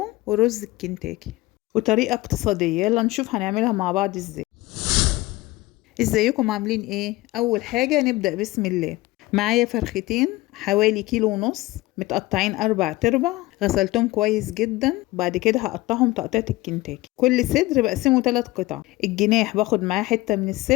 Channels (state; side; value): quieter; right; 19.5 dB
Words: ورز الكنتاكي، وطريقة اقتصادية. يلا نشوف هنعملها مع بعض ازاي. ازيكم عاملين ايه؟ اول حاجة نبدأ بسم الله. معايا فرختين حوالي 1.5 كيلو، متقطعين 4 تربع، غسلتهم كويس جدا. بعد كده هقطعهم تقطيعة الكنتاكي. كل صدر بقسمه 3 قطع. الجناح باخد معاه حتة من